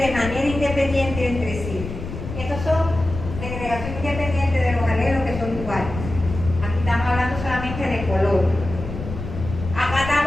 manera independiente entre sí. Estos son segregación independiente de los alelos que son iguales. Aquí estamos hablando solamente de color. Acá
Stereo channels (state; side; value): noise; left; rumble, 8 dB below the sound